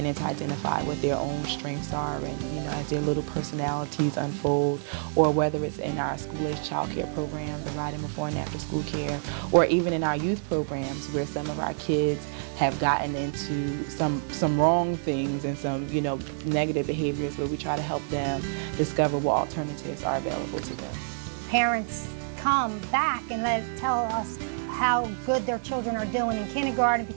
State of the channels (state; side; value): silent; left; 59 dB below the other